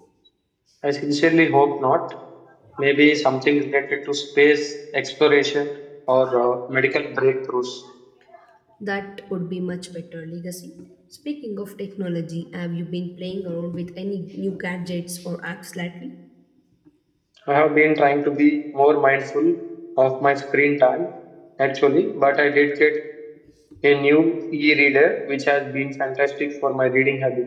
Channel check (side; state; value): both; identical; correlation 1.00